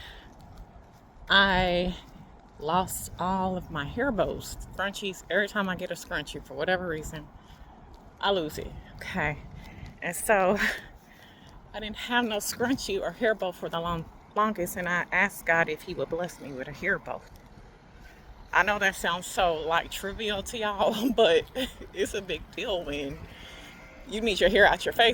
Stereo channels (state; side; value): identical; both; correlation 1.00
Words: I lost all of my hair bows, scrunchies. Every time I get a scrunchie, for whatever reason, I lose it. Okay, and so I didn't have no scrunchie or hair bow for the longest, and I asked God if He would bless me with a hair bow. I know that sounds so like trivial to y'all, but it's a big deal when you need your hair out your